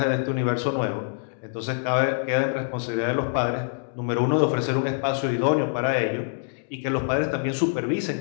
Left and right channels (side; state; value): right; silent; digital silence